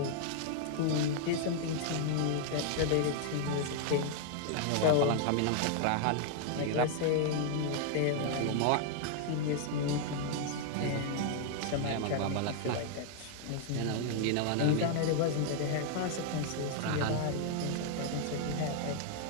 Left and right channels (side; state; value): both; different; correlation 0.00